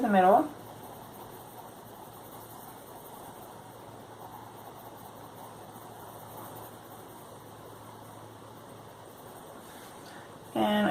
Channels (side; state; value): both; identical; correlation 1.00